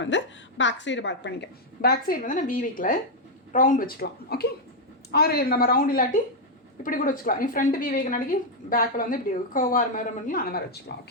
வந்து பேக் சைடு பண்ணிக்க. பேக் சைடு வந்து நான் வி வைக்கல, ரவுண்ட் வச்சுக்கலாம். ஓகே, ஆறு நம்ம ரவுண்ட் இல்லாட்டி இப்படி கூட வச்சுக்கலாம். நீ ஃப்ரண்ட் வி வைக்கனாடிக்கு பேக்கில் வந்து இப்படி கர்வாக மாதிரி பண்ணி அந்த மாதிரி வச்சுக்கலாம்.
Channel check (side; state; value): both; normal; correlation -0.01